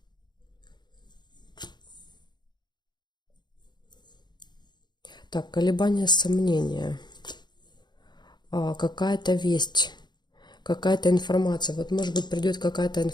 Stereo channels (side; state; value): right; late; 0.21 ms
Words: Так, колебания, сомнения. Какая-то весть, какая-то информация. Вот, может быть, придет какая-то